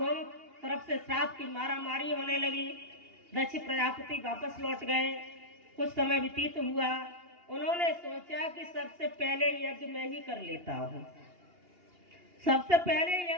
तरफ से श्राप की मारामारी होने लगी। दक्ष प्रजापति वापस लौट गए। कुछ समय व्यतीत हुआ। उन्होंने सोचा कि सबसे पहले यज्ञ मैं ही कर लेता हूँ, सबसे पहले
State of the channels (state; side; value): late; left; 2.8 ms